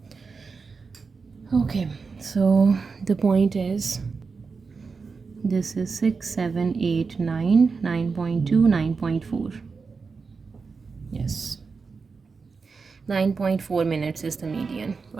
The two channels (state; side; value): quieter; left; 4.8 dB